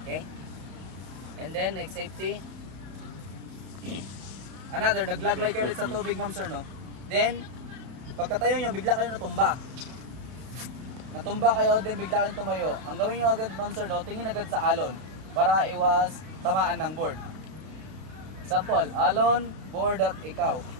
Okay? And then, next safety. Another, naglaglide kayo ulit sa tubig ma'am sir, no? Then, pagkatayo nyo, bigla kayo natumba. Natumba kayo, then bigla kayong tumayo. Ang gawin nyo agad ma'am sir, no? Tingin agad sa alon para iwas tamaan ng board. Example, alon, board at ikaw.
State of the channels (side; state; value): left; late; 32 ms